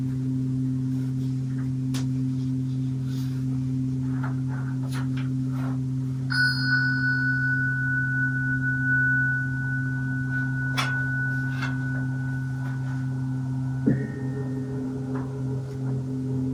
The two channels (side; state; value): both; identical; correlation 1.00